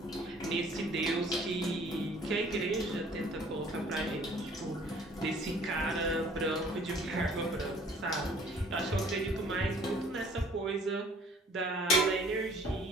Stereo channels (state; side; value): normal; both; correlation 0.55